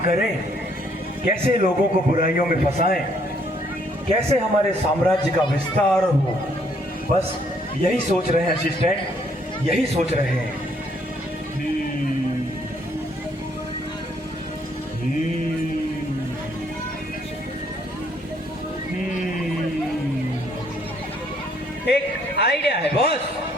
करें, कैसे लोगों को बुराइयों में फंसाएं, कैसे हमारे साम्राज्य का विस्तार हो, बस यही सोच रहे हैं असिस्टेंट, यही सोच रहे हैं। एक आइडिया है बॉस,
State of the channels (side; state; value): both; normal; correlation 0.67